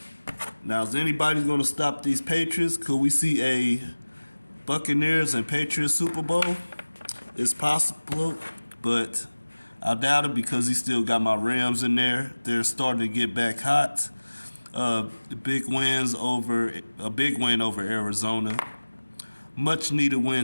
Now, is anybody going to stop these Patriots? Could we see a Buccaneers and Patriots Super Bowl? It's possible, but I doubt it because he still got my Rams in there. They're starting to get back hot. A big win over Arizona. Much needed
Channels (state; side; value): inverted; both; correlation -1.00